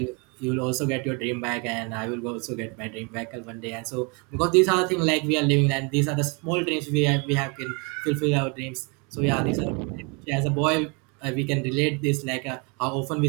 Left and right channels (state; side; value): quieter; left; 32.4 dB